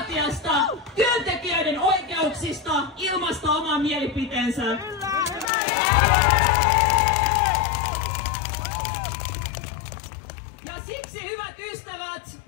työntekijöiden oikeuksista ilmaista oman mielipiteensä. Ja siksi, hyvät ystävät,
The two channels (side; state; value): right; drops out; at 5.5 s